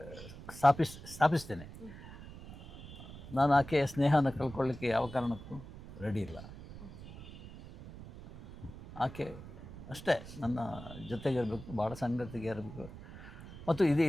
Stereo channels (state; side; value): noise; right; rumble, 14 dB below the sound